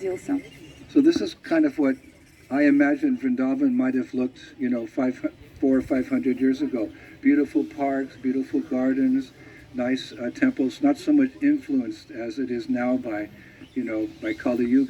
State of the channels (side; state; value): both; identical; correlation 1.00